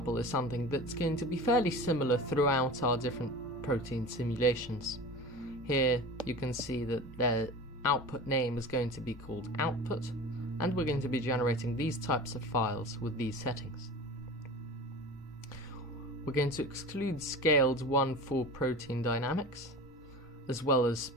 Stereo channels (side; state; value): both; normal; correlation 0.34